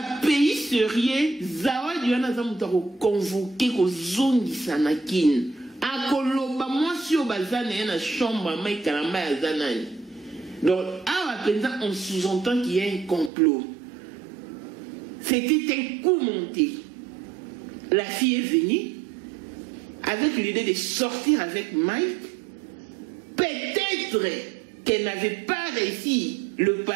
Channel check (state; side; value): drops out; left; at 13.3 s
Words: pays sérieux, Zawadi wana za mutu ko convoquer ko zongi sanakin. Akoloba mwasi o bazana na chambre Mike Kalamba azanani. Donc à présent on sous-entend qu'il y a un complot. C'était un coup monté. La fille est venue avec l'idée de sortir avec Mike. Peut-être qu'elle n'avait pas réussi le